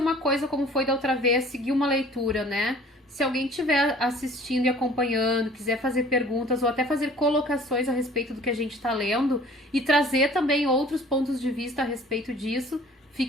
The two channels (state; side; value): normal; both; correlation 0.50